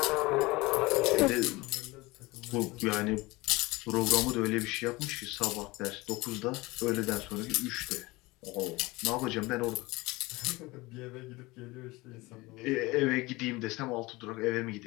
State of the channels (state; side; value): quieter; right; 22.1 dB